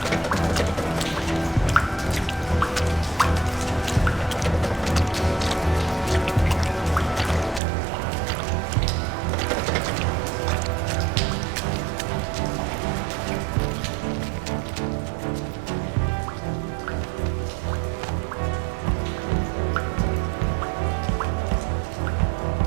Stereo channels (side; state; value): left; drops out; at 7.6 s